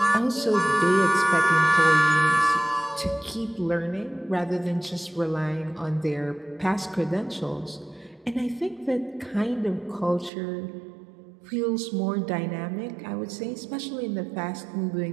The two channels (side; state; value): left; drops out; at 10.3 s